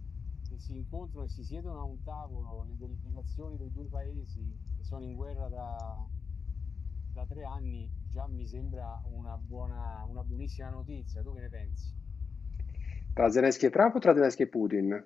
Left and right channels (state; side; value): quieter; right; 5.5 dB